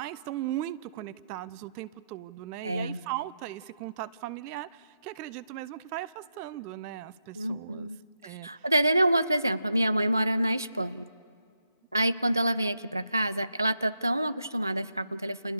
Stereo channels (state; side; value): inverted; both; correlation -0.83